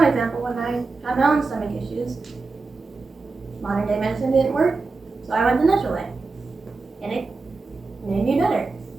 example, when I had my own stomach issues, modern day medicine didn't work, so I went the natural way, and it made me better.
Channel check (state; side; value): quieter; left; 3.9 dB